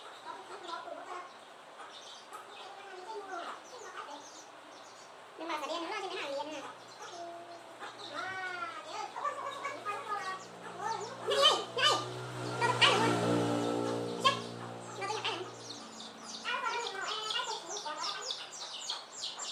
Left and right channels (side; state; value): both; identical; correlation 1.00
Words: nhưng mà phải đen nữa chứ cái nào liền nè.